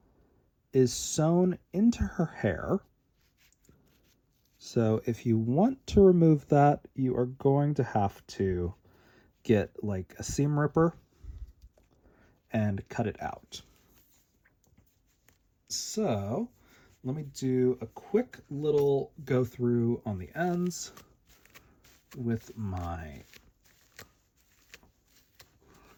is sewn into her hair. So if you want to remove that, you are going to have to get like a seam ripper and cut it out. So let me do a quick little go through on the ends with my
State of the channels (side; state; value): both; identical; correlation 1.00